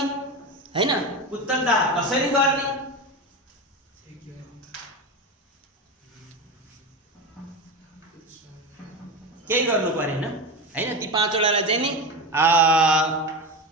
हैन, उत्तरदाह कसरी गर्ने, केही गर्नु परेन हैन। ती 5वटालाई चाहिँ नि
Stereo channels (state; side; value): normal; both; correlation 0.21